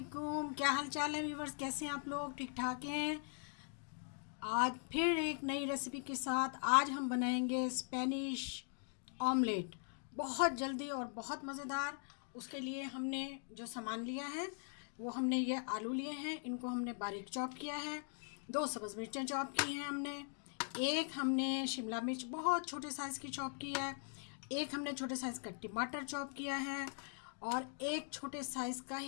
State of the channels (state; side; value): silent; right; 50 dB below the other